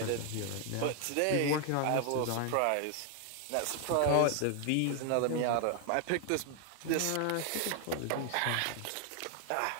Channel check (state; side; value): different; both; correlation 0.00